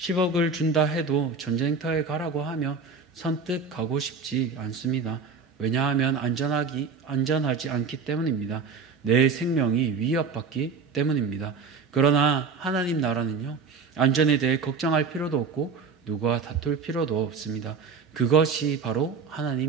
준다 해도 전쟁터에 가라고 하면 선뜻 가고 싶지 않습니다. 왜냐하면 안전하지 않기 때문입니다. 내 생명이 위협받기 때문입니다. 그러나 하나님 나라는요, 안전에 대해 걱정할 필요도 없고 누구와 다툴 필요도 없습니다. 그것이 바로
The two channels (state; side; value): quieter; left; 5.1 dB